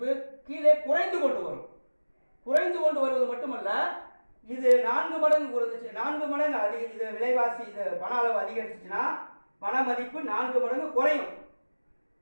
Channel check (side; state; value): both; inverted; correlation -1.00